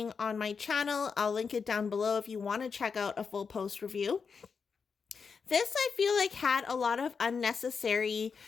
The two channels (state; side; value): quieter; right; 5.6 dB